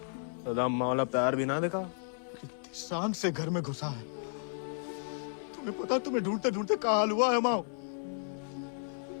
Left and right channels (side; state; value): right; silent; 56 dB below the other